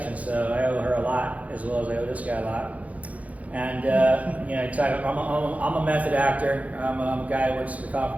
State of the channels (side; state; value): left; late; 0.069 ms